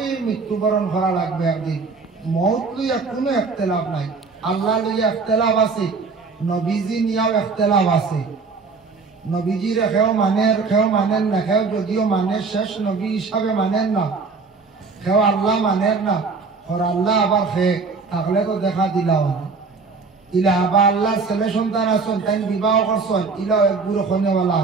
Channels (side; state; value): left; quieter; 4.5 dB